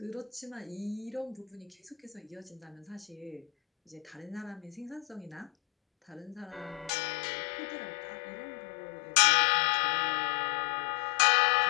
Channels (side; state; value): right; drops out; at 6.9 s